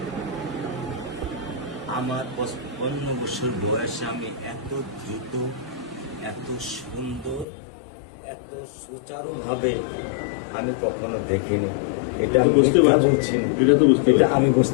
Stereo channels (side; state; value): right; drops out; at 7.5 s